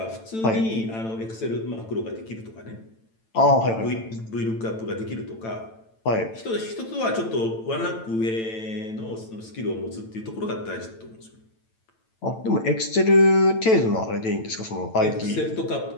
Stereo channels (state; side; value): late; right; 9.0 ms